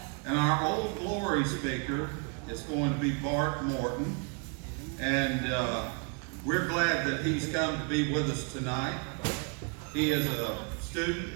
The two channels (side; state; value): left; quieter; 36.3 dB